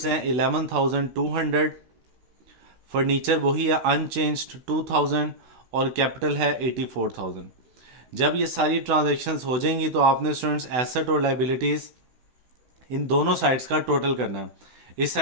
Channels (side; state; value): left; late; 16 ms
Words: हैं 11,200, फर्नीचर वही है अनचेंज्ड 2000 और कैपिटल है 84,000। जब ये सारी ट्रांजैक्शंस हो जाएंगी तो आपने स्टूडेंट्स एसेट और लाइबिलिटीज़ इन दोनों साइड्स का टोटल करना है। इस